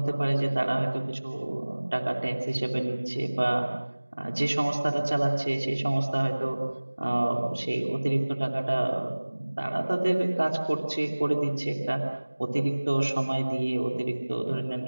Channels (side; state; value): both; inverted; correlation -1.00